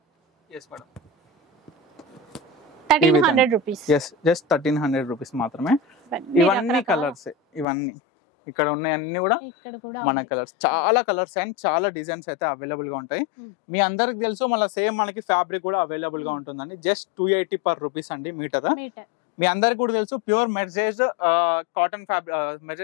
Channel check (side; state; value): right; drops out; at 7.7 s